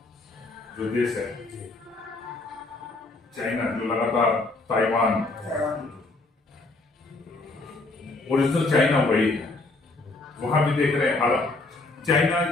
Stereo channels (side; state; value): right; quieter; 3.2 dB